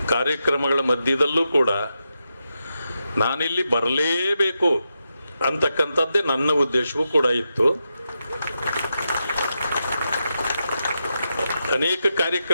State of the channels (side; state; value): both; inverted; correlation -0.86